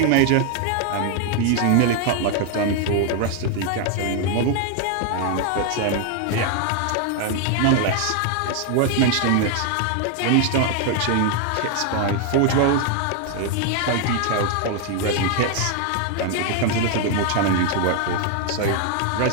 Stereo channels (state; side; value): different; both; correlation 0.00